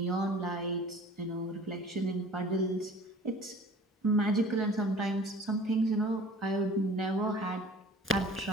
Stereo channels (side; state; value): both; normal; correlation 0.46